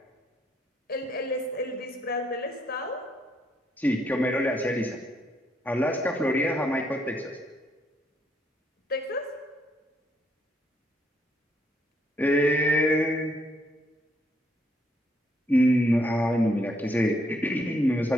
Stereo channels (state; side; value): normal; both; correlation 0.73